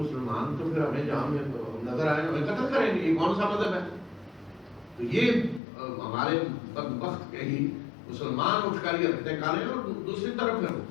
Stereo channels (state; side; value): drops out; right; at 5.6 s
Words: تو پھر ہمیں جہاں نظر آئے ہمیں قتل کریں گے، یہ کون سا مذہب ہے؟ تو یہ ہمارے بدبخت کے ہی مسلمان اٹھ کر یہ رکھتے کریں اور دوسری طرف